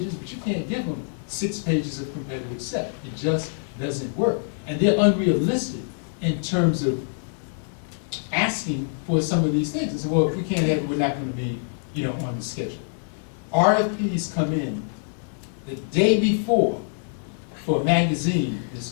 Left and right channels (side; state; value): right; silent; digital silence